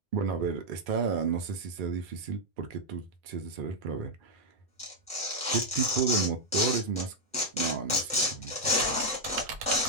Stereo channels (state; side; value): normal; both; correlation -0.01